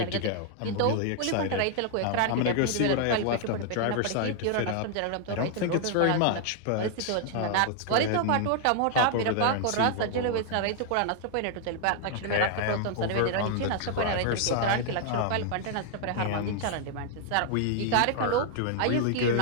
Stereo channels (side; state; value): both; different; correlation 0.00